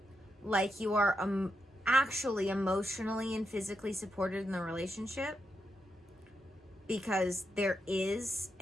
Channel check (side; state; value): both; normal; correlation 0.84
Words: like you are actually emotionally and physically supported in the relationship, because there is